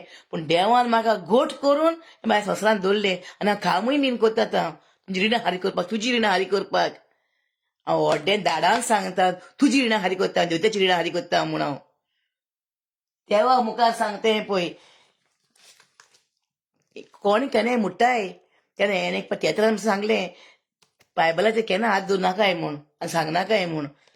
पूण देवान म्हाका घोट करून म्हाज्या संवसारान दवरलें आनी हांव कामूय बीन करता आतां तुजी रिणां हारी करपाक तुजी रिणां हारी करपाक हांव व्हड्डें धाडान सांगता तुजी रिणां हारी करता देवताची रिणां हारी करता म्हूण हांव देवा मुखार सांगतें पळय कोण केन्नाय मुट्टाय तेन्ना हें एक तियेत्रान सांगलें बायबलाचेर केन्ना हात दवरूं नाकाय म्हूण आनी सांगनाकाय म्हूण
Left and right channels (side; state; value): both; identical; correlation 1.00